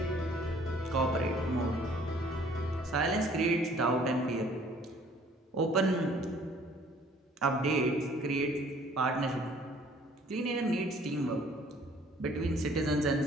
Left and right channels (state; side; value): normal; both; correlation 0.57